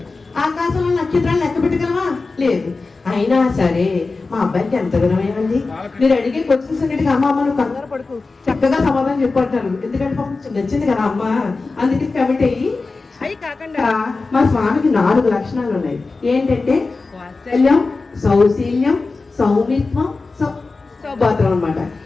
ఆకాశంలో నక్షత్రాలు లెక్క పెట్టగలవా? లేదు. అయినా సరే మా అబ్బాయికి ఎంత గుణమేమండి. మీరు అడిగే క్వశ్చన్స్ అన్నిటికీ అమ్మ అమ్మ నువ్వు కంగారు పడుకు, చక్కగా సమాధానం చెప్పంటాను. ఎందుకంటే పాపం నచ్చింది కదా అమ్మ, అందుకే కమిట్ అయ్యి. అవి కాకుండా మా స్వామికి 4 లక్షణాలు ఉన్నాయి. ఏంటంటే వాత్సల్యం, సౌశీల్యం, సౌమిత్వం, సౌభాత్రం అనమాట.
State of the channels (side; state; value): right; quieter; 3.8 dB